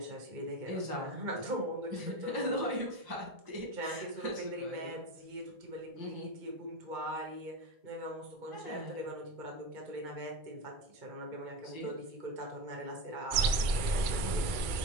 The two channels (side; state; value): left; late; 2.2 ms